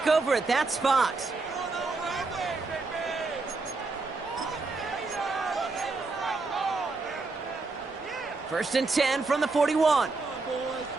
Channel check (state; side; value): quieter; left; 3.8 dB